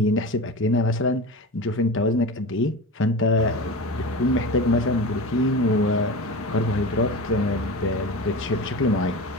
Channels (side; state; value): both; normal; correlation 0.28